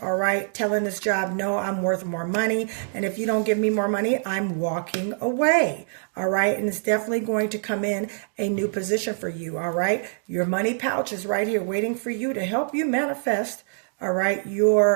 all right? Telling this job, no, I'm worth more money. And if you don't give me more money, I'm walking away, all right? And it's definitely going to come in a new position for you, all right? Your money pouch is right here waiting for you to help you manifest, all right,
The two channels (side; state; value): left; silent; digital silence